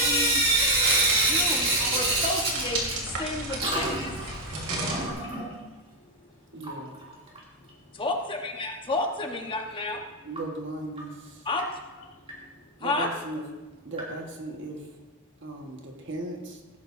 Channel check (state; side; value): normal; both; correlation 0.04